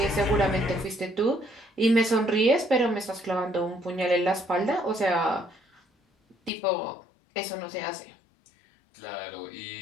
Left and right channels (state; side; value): drops out; right; at 6.5 s